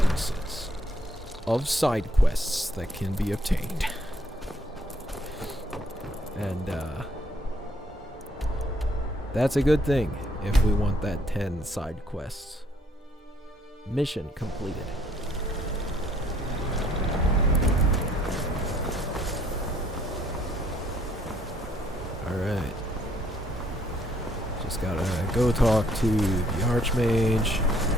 of side quests that can be obtained. And that's a good thing if we want that 10 side quests. Mission completed. Alright. Just gotta go talk to the Archmage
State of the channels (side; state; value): both; normal; correlation 0.66